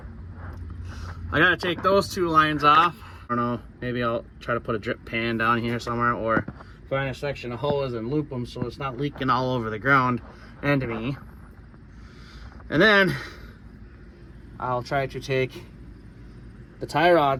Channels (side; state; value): both; identical; correlation 1.00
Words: I gotta take those two lines off. I don't know, maybe I'll try to put a drip pan down here somewhere, or find a section of hose and loop them so it's not leaking all over the ground and to me. And then I'll try to take the tie